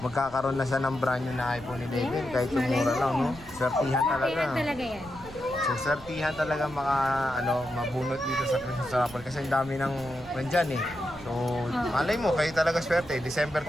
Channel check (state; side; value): noise; right; rumble, 19 dB below the sound